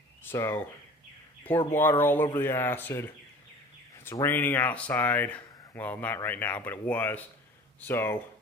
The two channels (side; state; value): both; normal; correlation 0.43